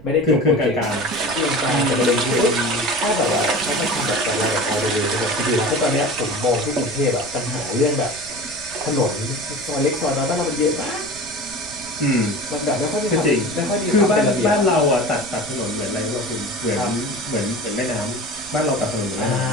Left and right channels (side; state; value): right; noise; rumble, 19 dB below the sound